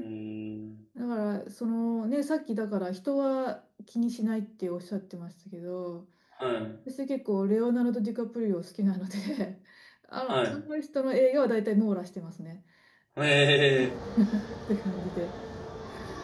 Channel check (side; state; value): both; identical; correlation 1.00